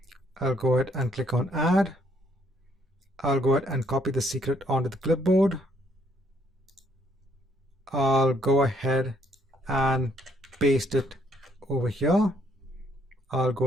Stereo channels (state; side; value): normal; both; correlation 0.68